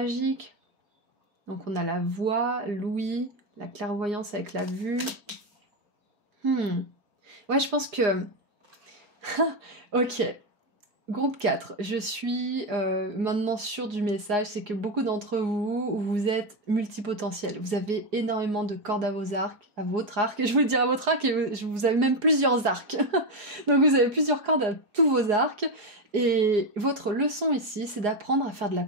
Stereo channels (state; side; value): late; left; 4.8 ms